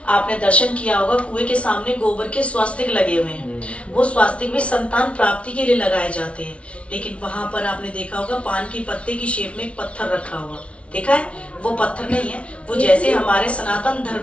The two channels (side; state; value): right; late; 0.062 ms